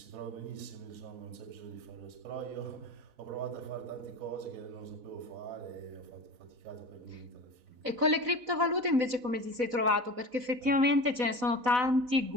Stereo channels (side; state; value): left; late; 4.0 ms